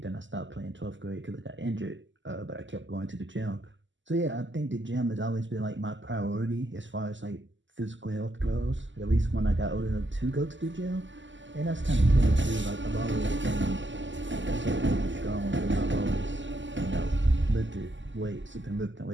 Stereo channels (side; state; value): left; late; 0.54 ms